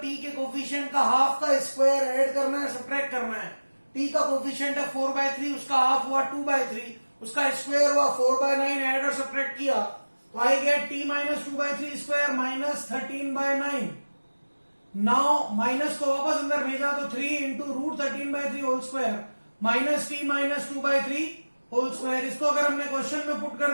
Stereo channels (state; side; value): inverted; both; correlation -1.00